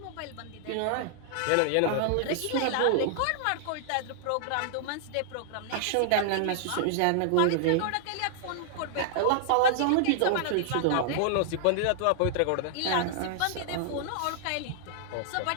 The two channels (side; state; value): both; different; correlation -0.01